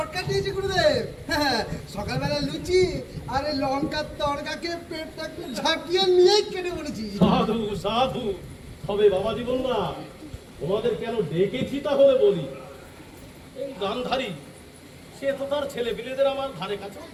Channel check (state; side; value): identical; both; correlation 1.00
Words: দিয়েছি গুরুদেব। হ্যাঁ, সকালবেলা লুচি আর এই লঙ্কার তরকাকে পেটটা একটু ঝাঁকিয়ে নিয়েই কেটে বলেছি। সাধু সাধু। তবে বাবা জীবনরা, তোমাদের কেন ডেকেছি তাহলে বলি। এই গান্ধারী সে তো তার ছেলে পিলেদের আমার ধারে কাছে